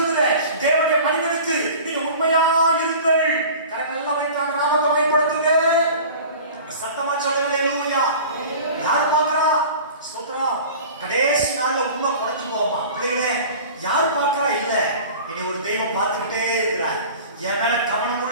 தேவனுடைய மனிதனுக்கு நீங்க உண்மையாய் இருங்கள். கரங்கள் எல்லாம் வைத்தான் நாமத்தை பயன்படுத்துங்க. சத்தமா சொல்லுங்க. ஹalleluya. யார் பார்க்கறா? ஸ்தோத்திரம். கடைசி நாள்ல உண்மை குறைஞ்சு போமா பிள்ளைகளே? யார் பார்க்கறா? இல்ல, இனி ஒரு தெய்வம் பார்த்துக்கிட்டே இருக்கிறார். என் மேல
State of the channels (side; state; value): both; inverted; correlation -0.40